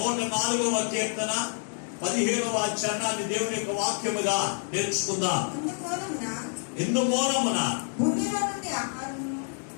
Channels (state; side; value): silent; right; 57 dB below the other